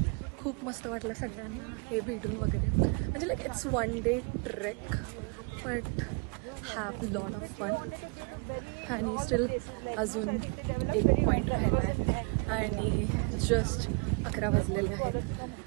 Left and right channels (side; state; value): left; quieter; 32.5 dB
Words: खूप मस्त वाटलं सगळ्यांना हे भेटून वगैरे. म्हणजे like it's 1 day trek but have lot of fun. आणि स्टील अजून एक पॉईंट राहिला आहे आणि जस्ट 11 वाजलेले आहेत.